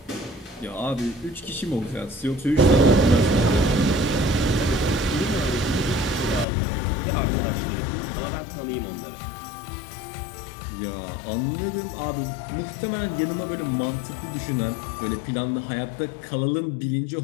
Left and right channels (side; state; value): right; drops out; at 6.5 s